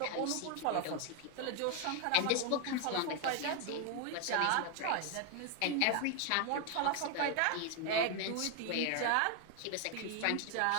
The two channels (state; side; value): different; both; correlation 0.01